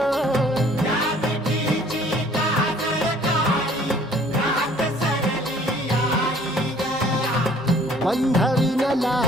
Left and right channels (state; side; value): normal; both; correlation 0.55